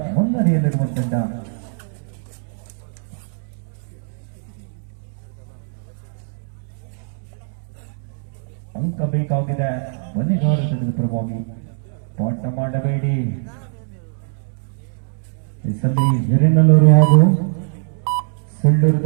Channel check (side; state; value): left; silent; 62 dB below the other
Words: ಮುನ್ನಡೆಯಲ್ಲಿರುವ ತಂಡ. ಅಂಕ ಬೇಕಾಗಿದೆ ಬಲಿಗಾರ ತಂಡದ ಪರವಾಗಿ. ಪಾಠ ಮಾಡಬೇಡಿ. ಈ ಸಲ ಹಿರೇನಲ್ಲೂರು ಹಾಗೂ ಸುಳ್ಳೂರು